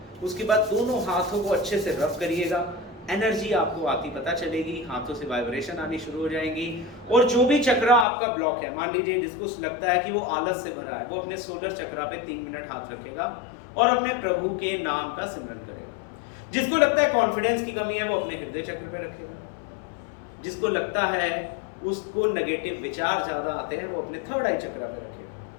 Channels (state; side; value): drops out; right; at 8.1 s